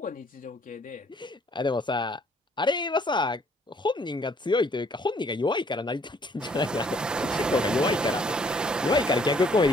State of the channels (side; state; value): both; normal; correlation 0.63